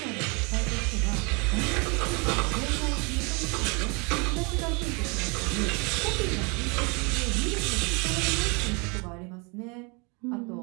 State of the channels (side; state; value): left; quieter; 31.0 dB